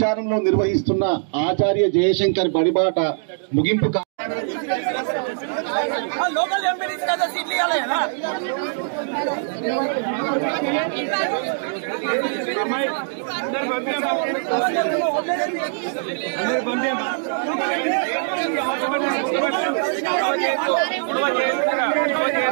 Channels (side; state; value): left; silent; digital silence